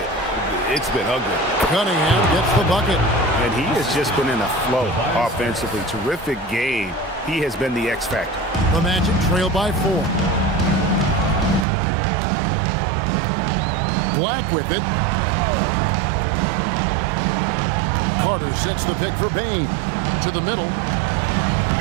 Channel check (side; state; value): left; drops out; at 11.7 s